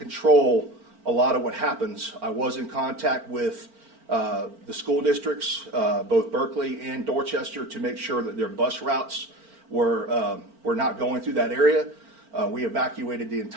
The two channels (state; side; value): late; left; 4.4 ms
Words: a lot of what happens. I was in contact with the school districts, both Berkeley and Dorchester, to make sure that their bus routes were not going through that area. We evacuated the